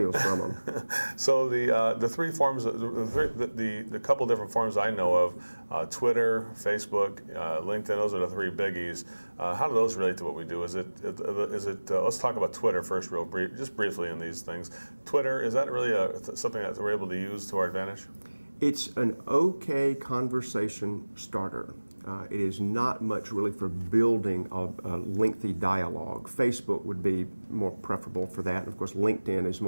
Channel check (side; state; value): both; inverted; correlation -1.00